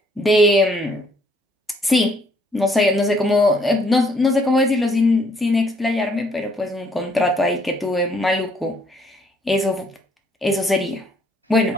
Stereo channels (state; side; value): normal; both; correlation 0.65